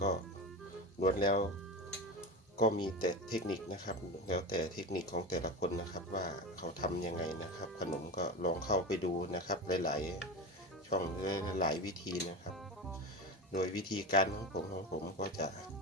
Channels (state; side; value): normal; both; correlation 0.25